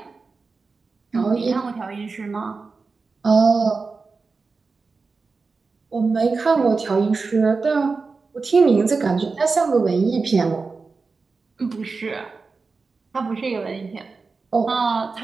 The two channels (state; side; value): quieter; left; 4.3 dB